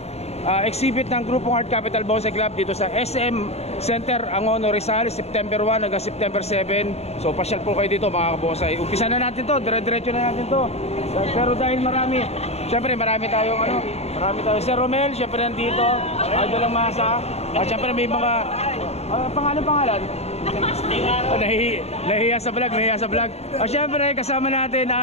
exhibit ng grupong Art Capital Bonsai Club dito sa SM Center, Angono, Rizal, September 1 hanggang September 7. So pasyal po kayo dito mga kabosay. Umpisa na natin to, dire-diretso na natin to. Pero dahil marami tayong marami tayong Sir Romel, syempre nandito, Idol lang Masa. Syempre may mga pangalan. Nahiya sa vlog. Syempre kasama natin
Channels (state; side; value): late; right; 0.31 ms